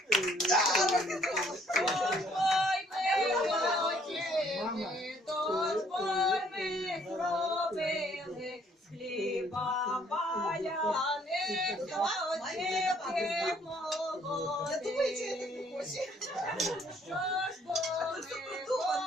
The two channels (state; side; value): normal; both; correlation 0.64